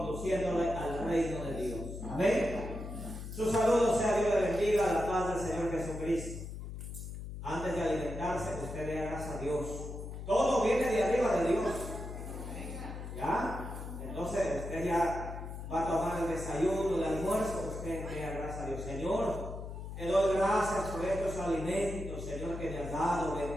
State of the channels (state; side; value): noise; left; hum, 8 dB below the sound